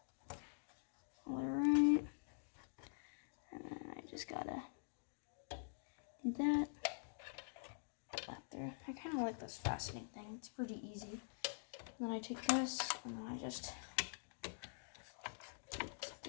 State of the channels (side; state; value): right; silent; digital silence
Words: Alright. And then I just gotta do that. Up there. I kind of like this fastening thing. It's pretty easy. And then I take this, and then I just